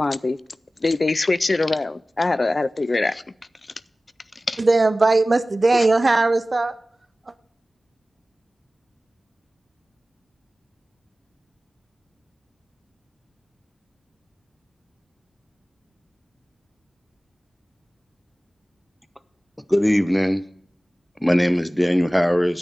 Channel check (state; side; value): normal; both; correlation 0.97